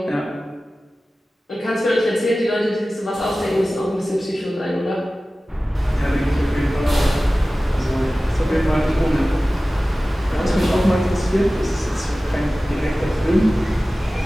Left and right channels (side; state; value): both; normal; correlation 0.96